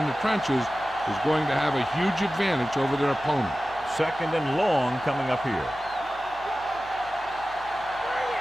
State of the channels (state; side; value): noise; right; hum, 22 dB below the sound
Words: the trenches is going to have a huge advantage over their opponent. 2nd and long coming up here.